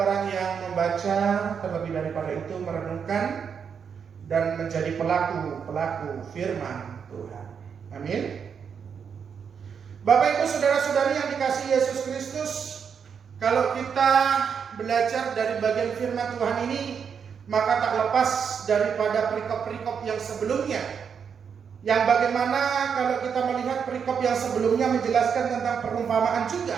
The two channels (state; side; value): quieter; left; 6.9 dB